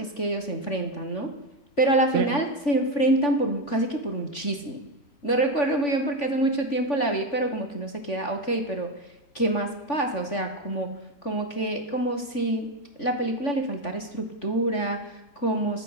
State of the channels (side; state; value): right; late; 3.5 ms